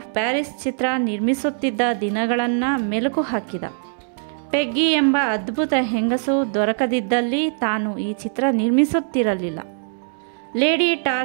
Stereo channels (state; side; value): silent; left; 60 dB below the other